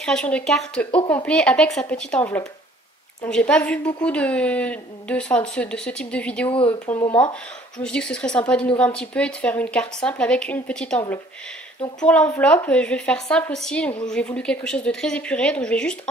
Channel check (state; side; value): normal; both; correlation 0.56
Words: de carte au complet avec sa petite enveloppe. Donc j'ai pas vu beaucoup de ce type de vidéo pour le moment. Je me suis dit que ce serait sympa d'innover un petit peu et de faire une carte simple avec une petite enveloppe. Donc pour l'enveloppe, je vais faire simple aussi. Donc j'ai voulu quelque chose de très épuré. Donc je vais juste